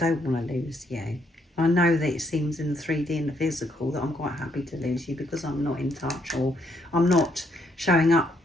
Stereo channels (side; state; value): both; normal; correlation 0.73